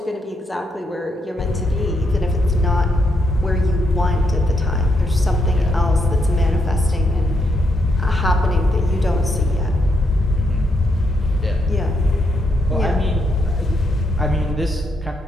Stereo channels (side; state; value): both; normal; correlation 0.78